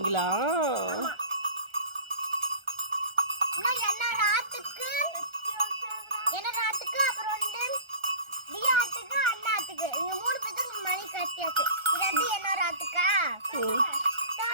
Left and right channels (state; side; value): late; left; 1.3 ms